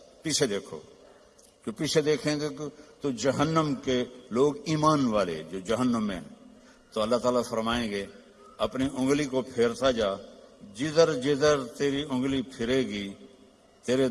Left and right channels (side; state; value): both; identical; correlation 1.00